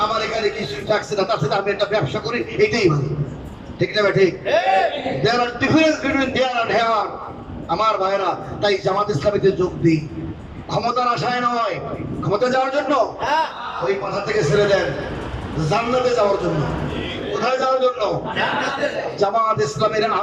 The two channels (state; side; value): identical; both; correlation 1.00